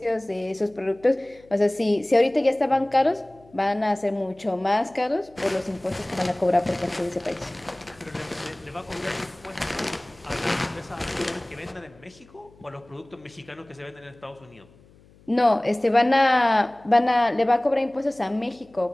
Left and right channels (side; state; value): left; noise; hum, 27 dB below the sound